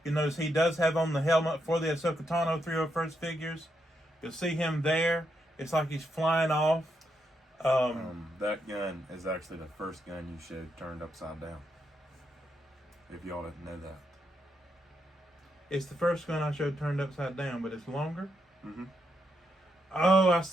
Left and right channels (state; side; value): normal; both; correlation 0.81